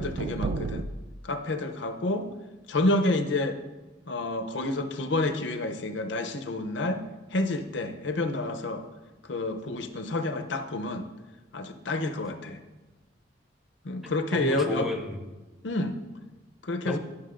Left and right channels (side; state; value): both; normal; correlation 0.34